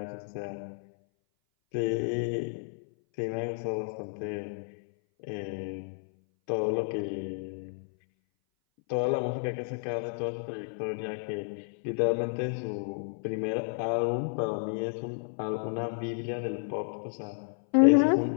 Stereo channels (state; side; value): silent; right; 57 dB below the other